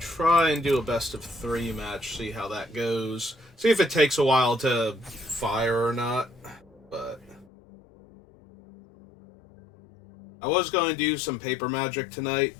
and do a best of 3 match, see how that goes. See if it takes a while to fire or not. But I was going to do some paper magic tonight,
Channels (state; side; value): drops out; right; at 7.5 s